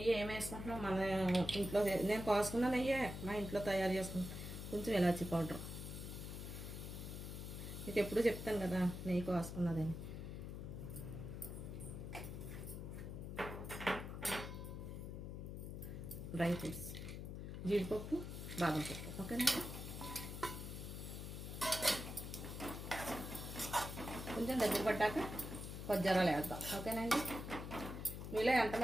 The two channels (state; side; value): noise; left; hum, 7 dB below the sound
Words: ఏం వేసుకుంటున్నాం మన ఇంట్లో, నేను కోసుకున్న నెయ్యి మా ఇంట్లో తయారు చేసుకుంటాం. కొంచెం ఇలాచీ పౌడర్, మీకు ఎప్పుడు చెప్తాను కదా నెయ్యి కోసుకున్నదని. డ్రై ఫ్రూట్స్, జీడిపప్పు, బాదం పప్పు. ఓకేనా? కొంచెం దగ్గర పడ్డాక కొజ్జారాలు వేద్దాం. ఓకేనండి? మీలో